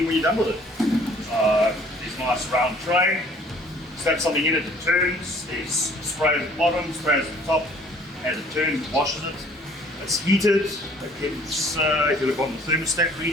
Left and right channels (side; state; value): both; normal; correlation 0.56